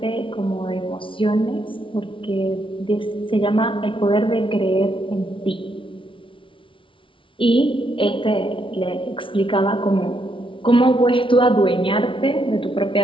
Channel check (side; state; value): right; late; 0.25 ms